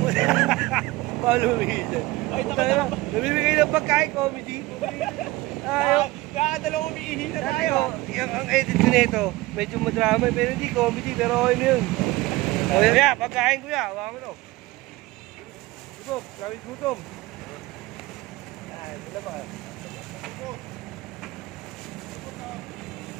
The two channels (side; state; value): left; quieter; 19.9 dB